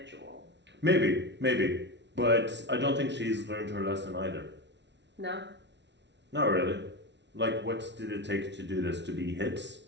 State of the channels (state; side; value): late; left; 0.51 ms